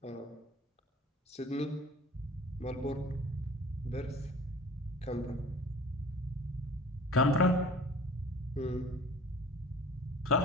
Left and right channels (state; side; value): normal; both; correlation 0.44